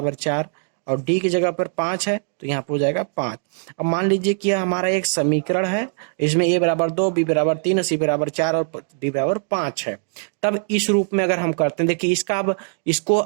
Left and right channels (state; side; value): silent; left; 65 dB below the other